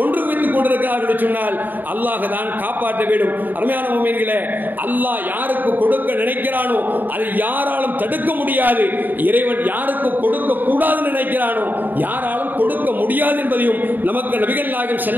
வைத்துக் கொண்டிருக்கிறார்கள் என்று சொன்னால் அல்லாஹ் தான் காப்பாற்ற வேண்டும். அருமையான முஃமின்களே, அல்லாஹ் யாருக்கு கொடுக்க நினைக்கிறானோ அதை யாராலும் தடுக்க முடியாது. இறைவன் யாருக்கு கொடுக்க கூடாது நினைக்கிறானோ யாராலும் கொடுக்க முடியாது என்பதையும் நமக்கு நபிகள் நாயகம்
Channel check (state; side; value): late; left; 0.089 ms